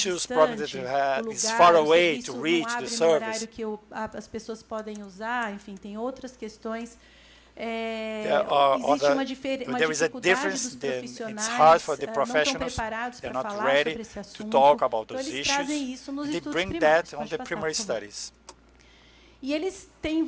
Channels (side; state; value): both; identical; correlation 1.00